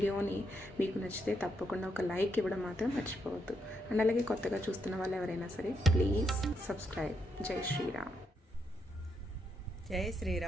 మీకు నచ్చితే తప్పకుండా ఒక లైక్ ఇవ్వడం మాత్రం మర్చిపోవద్దు. అండ్ అలాగే కొత్తగా చూస్తున్న వాళ్ళు ఎవరైనా సరే ప్లీజ్ సబ్స్క్రైబ్. జై శ్రీరామ్. జై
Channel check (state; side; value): normal; both; correlation 0.79